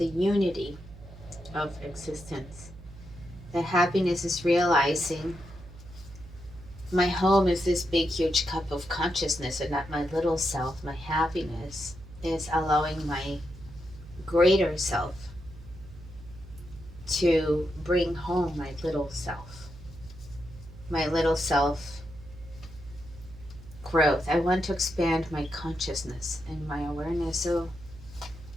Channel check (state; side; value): noise; right; hum, 17 dB below the sound